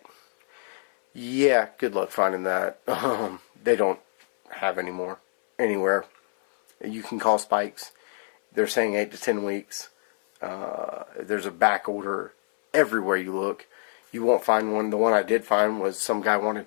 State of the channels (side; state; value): right; silent; 61 dB below the other